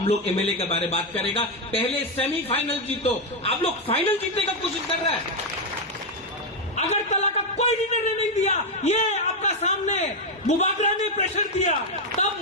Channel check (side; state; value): both; normal; correlation 0.04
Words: लोग एमएलए के बारे में बात करेगा। पहले सेमीफाइनल जीतो। आप लोग फाइनल जीतने का कोशिश कर रहे हैं। अगरतला का कोई निर्णय नहीं दिया, ये आपका सामने बुबागरा ने प्रेशर दिया, तब